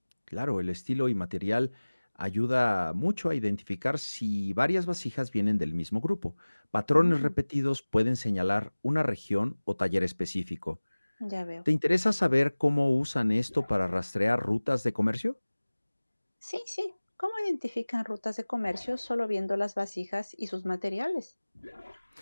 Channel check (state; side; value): inverted; both; correlation -1.00